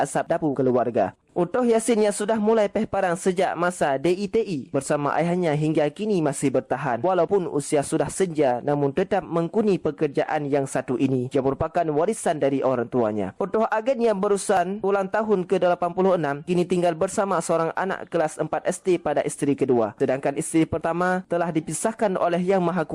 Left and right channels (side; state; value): both; identical; correlation 1.00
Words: dapur keluarga. Utuh Yasin yang sudah mulai peh parang sejak masa DITI bersama ayahnya hingga kini masih bertahan. Walaupun usia sudah senja, namun tetap mengkuni pekerjaan yang satu ini. Ia merupakan warisan dari orang tuanya. Utuh Agen yang berusan ulang tahun ke-86 kini tinggal bersama seorang anak kelas 4 SD pada isteri kedua. Sedangkan isteri pertama telah dipisahkan oleh Yang Maha